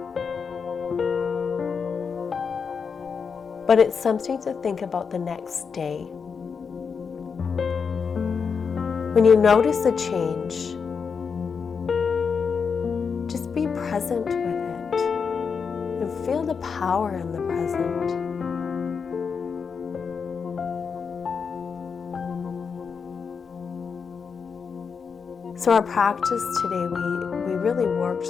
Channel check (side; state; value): right; quieter; 5.9 dB